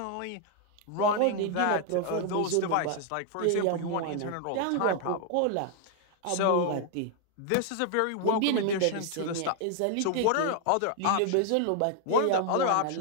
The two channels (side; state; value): both; different; correlation 0.00